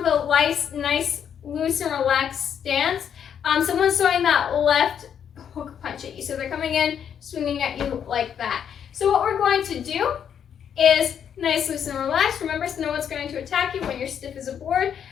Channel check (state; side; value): quieter; right; 8.4 dB